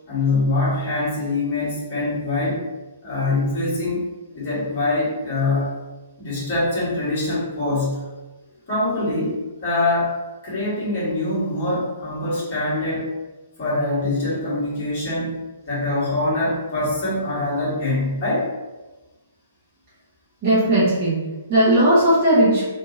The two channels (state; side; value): inverted; both; correlation -0.34